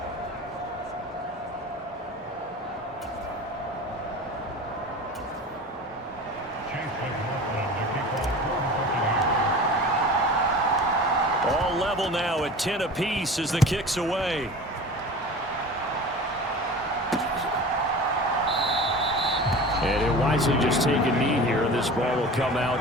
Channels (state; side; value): normal; both; correlation 0.36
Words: All level now at 10 apiece as the kick's away. And he'll wisely just take a knee here, and this ball will come